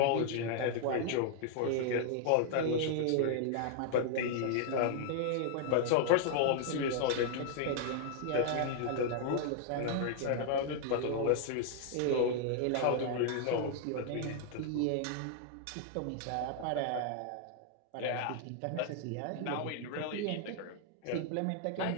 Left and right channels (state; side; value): different; both; correlation 0.00